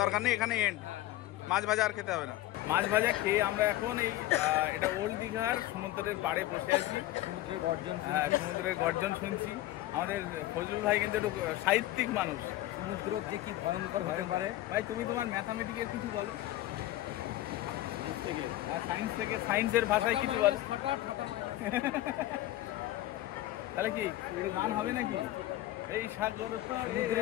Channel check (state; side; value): quieter; right; 15.7 dB